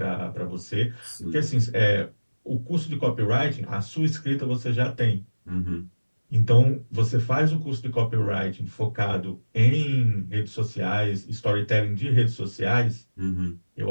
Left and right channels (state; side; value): inverted; both; correlation -1.00